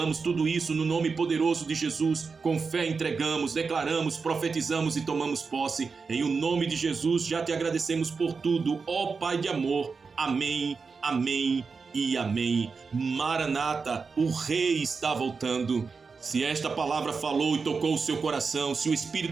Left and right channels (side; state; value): left; quieter; 4.9 dB